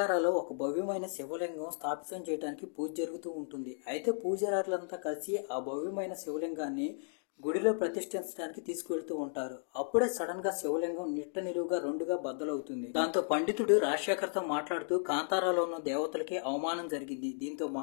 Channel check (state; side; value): silent; right; digital silence